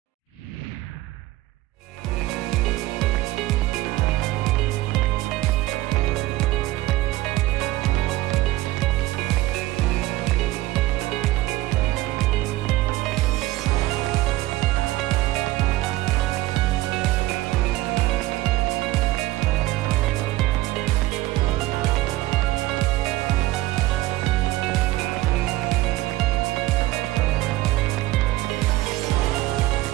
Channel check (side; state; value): left; quieter; 17.2 dB